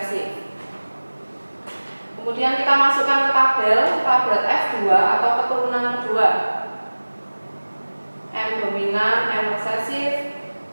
Kemudian kita masukkan ke tabel F2 atau keturunan kedua. M dominan, M resesif,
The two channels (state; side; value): inverted; both; correlation -1.00